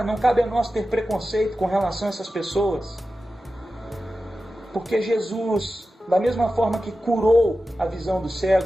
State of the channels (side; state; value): both; normal; correlation 0.93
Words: não cabe a nós ter preconceito com relação a essas pessoas. Porque Jesus, da mesma forma que curou a visão do